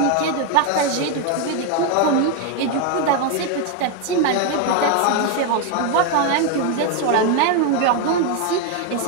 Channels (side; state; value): both; different; correlation 0.01